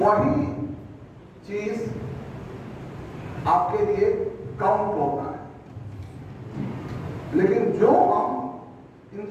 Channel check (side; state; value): both; identical; correlation 1.00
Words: चीज आपके लिए काउंट होता है। लेकिन जो हम